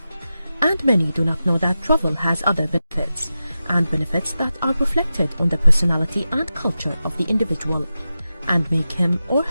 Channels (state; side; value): inverted; both; correlation -0.92